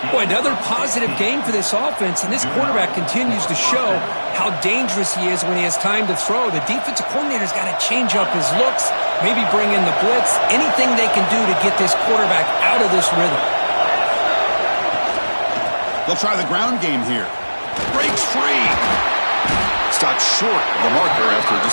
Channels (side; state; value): both; inverted; correlation -1.00